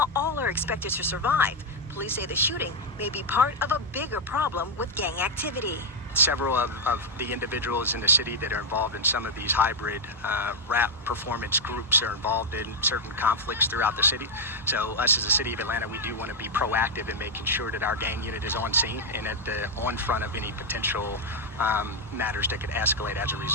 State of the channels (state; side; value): normal; both; correlation 0.01